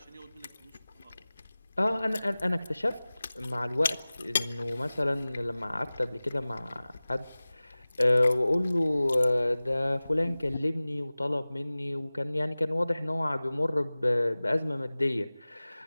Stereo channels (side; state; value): both; inverted; correlation -0.98